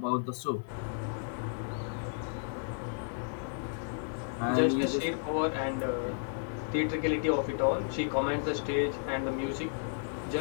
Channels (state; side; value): silent; right; digital silence